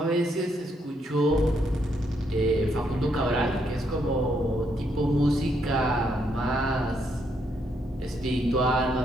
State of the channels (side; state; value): both; normal; correlation 0.75